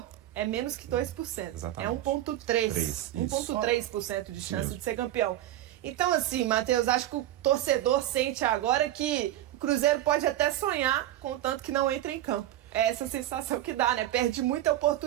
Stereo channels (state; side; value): quieter; left; 13.6 dB